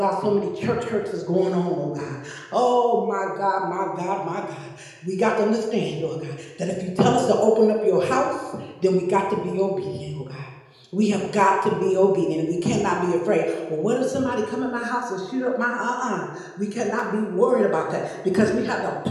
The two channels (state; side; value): identical; both; correlation 1.00